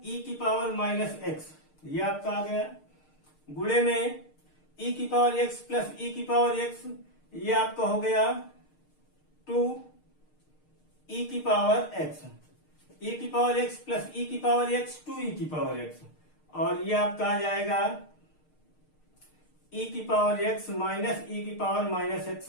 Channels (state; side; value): late; right; 6.5 ms